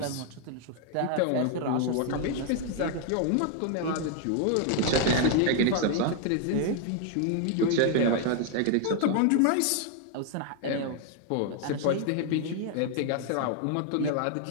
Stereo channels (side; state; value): both; different; correlation 0.00